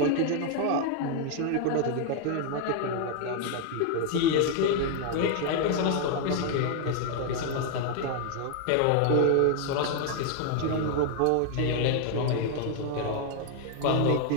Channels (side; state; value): both; different; correlation 0.00